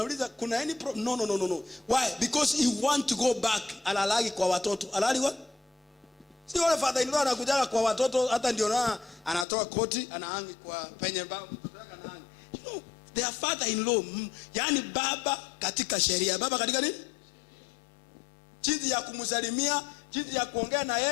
kuna any problem? No. Why? Because he want to go back. Alalagi kwa watoto. Alali what? Si wale father-in-law anakujaga kwa watoto hata ndio na anatoa koti anahangi kwa penye baba mtoto yake anahangi. You know, their father-in-law, yani baba katika sheria. Baba katika nini? Jinsi ya kumsalimia, jinsi ya kuongea na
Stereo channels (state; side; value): drops out; right; at 9.5 s